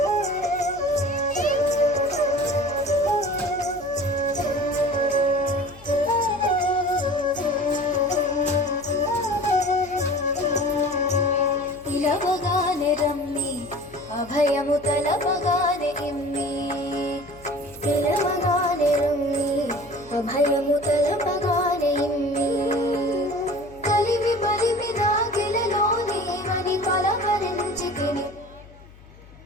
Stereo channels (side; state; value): left; noise; hum, 22 dB below the sound